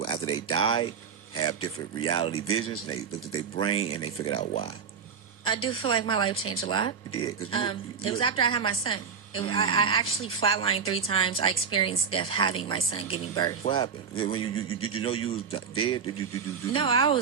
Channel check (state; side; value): quieter; left; 6.4 dB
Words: after they die have different reality visions. And they looked at their brain and they figured out why. I do feel like my life changed a lot. It did. It was after I had my son. I actually flatlined 3 times. I experienced death having my son giving birth. What happened? When did you know you was dead? No, I